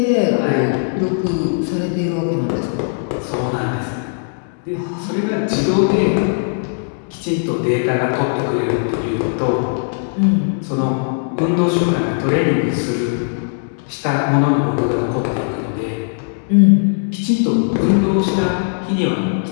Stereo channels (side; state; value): right; silent; digital silence